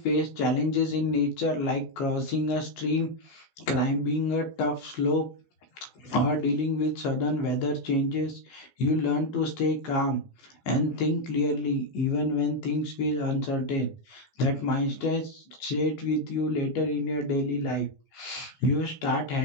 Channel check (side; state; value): right; late; 15 ms